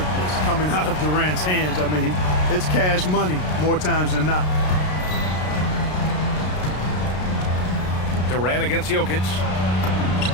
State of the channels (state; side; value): late; right; 33 ms